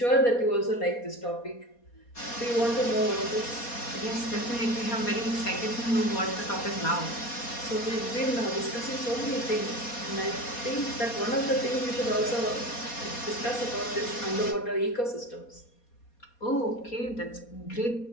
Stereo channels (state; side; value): late; right; 4.2 ms